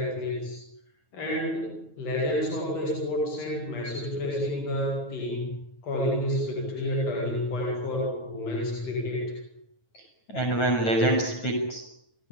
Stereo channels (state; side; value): late; right; 9.2 ms